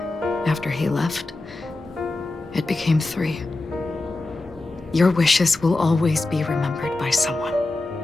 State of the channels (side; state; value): right; quieter; 3.0 dB